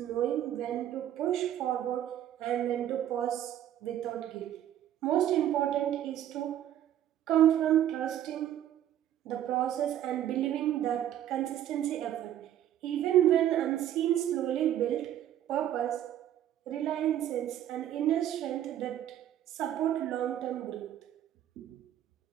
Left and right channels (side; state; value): left; quieter; 11.4 dB